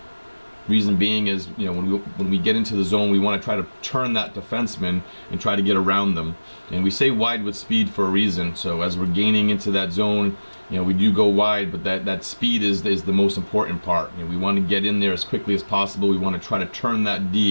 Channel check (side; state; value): both; inverted; correlation -1.00